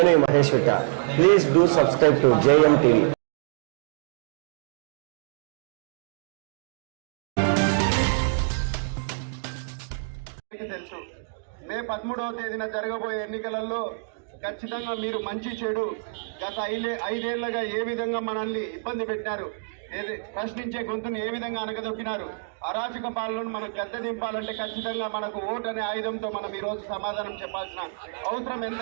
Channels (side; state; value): left; silent; digital silence